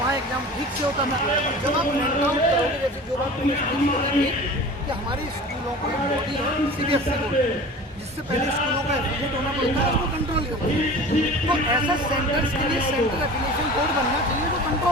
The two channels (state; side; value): normal; both; correlation 0.38